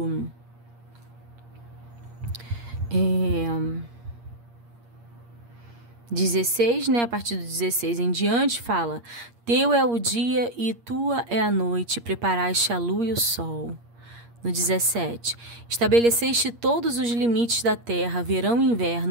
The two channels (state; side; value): late; left; 8.5 ms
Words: 16, né? A partir do 16 em diante, fala: Teu é o dia e tua é a noite, preparaste a lua e o sol. No 17, estabeleceste todos os limites da terra, verão e